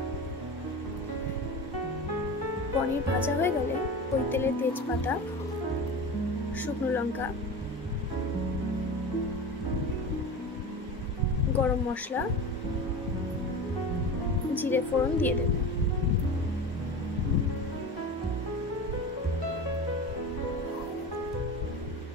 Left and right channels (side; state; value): both; normal; correlation 0.30